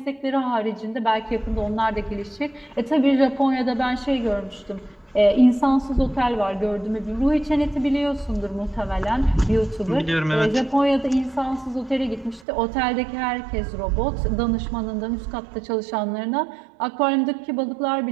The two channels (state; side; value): drops out; left; at 12.5 s